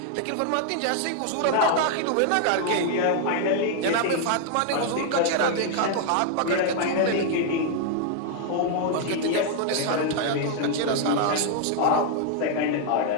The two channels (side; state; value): both; different; correlation 0.00